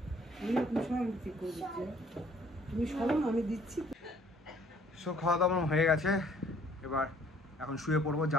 সো খাওয়া দাওয়া হয়ে গেছে, এবার এখন শুয়ে পড়বো।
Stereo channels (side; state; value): both; normal; correlation 0.59